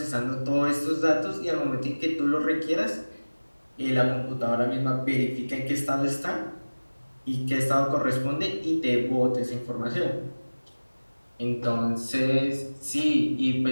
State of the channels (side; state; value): both; inverted; correlation -1.00